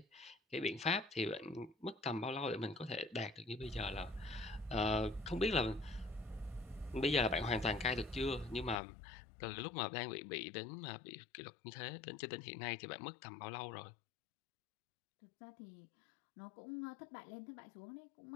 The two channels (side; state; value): right; drops out; at 8.8 s